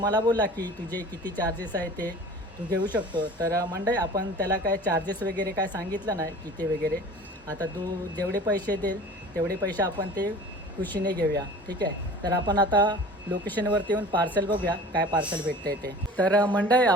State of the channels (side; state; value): both; normal; correlation 0.42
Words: बोलला की तुझे किती चार्जेस आहे ते तू घेऊ शकतो. तर मंडळी, आपण त्याला काय चार्जेस वगैरे काय सांगितलं नाही किती वगैरे. आता तू जेवढे पैसे देईल तेवढे पैसे आपण ते खुशीने घेऊया, ठीक आहे. तर आपण आता लोकेशनवरती येऊन पार्सल बघूया काय पार्सल भेटतं आहे ते. तर मंडळी,